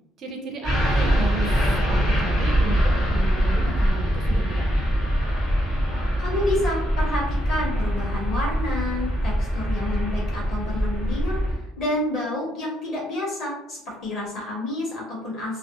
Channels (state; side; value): normal; both; correlation 0.80